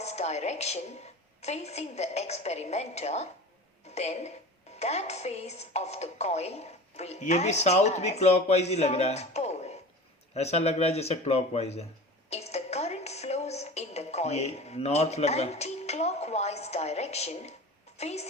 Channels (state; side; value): normal; both; correlation 0.35